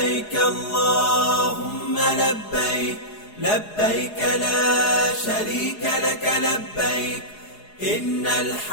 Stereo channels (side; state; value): right; late; 4.8 ms